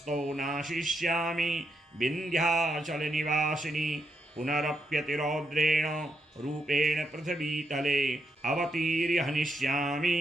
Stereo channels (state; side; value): normal; both; correlation 0.80